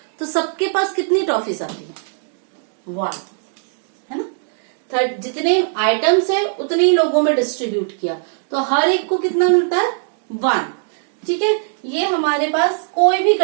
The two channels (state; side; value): silent; left; digital silence